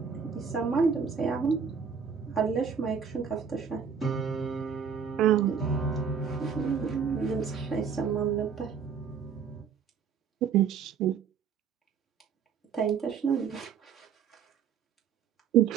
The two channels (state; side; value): quieter; left; 6.7 dB